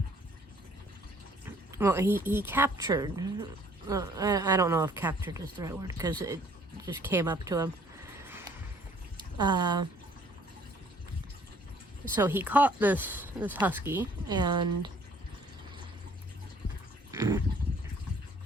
he captured, I don't know if captured is the right word, because it just came up to him. So he caught this husky, and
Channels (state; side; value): normal; both; correlation 0.58